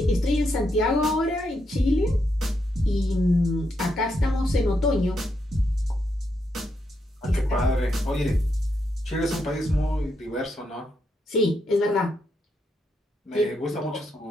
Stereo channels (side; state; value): both; normal; correlation 0.81